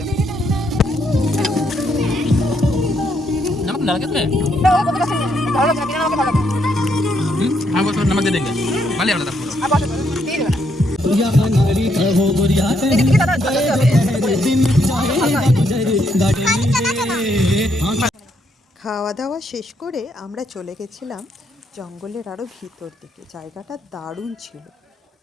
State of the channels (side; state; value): both; normal; correlation 0.75